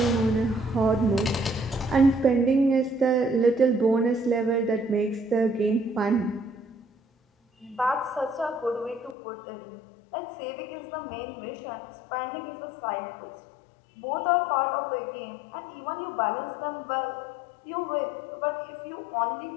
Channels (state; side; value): drops out; right; at 9.2 s